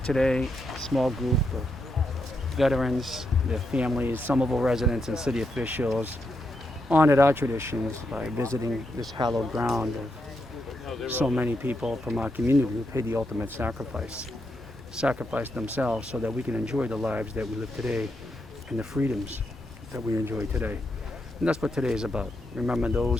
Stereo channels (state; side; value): normal; both; correlation 0.82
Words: a small group of veterans, their families, Somerville residents, and city officials honored our traditions by visiting this hallowed ground of so many people from our community who paid the ultimate sacrificed themselves so that we can enjoy the lives that we live today and the freedoms that we enjoy today. And that's what today is about. Remember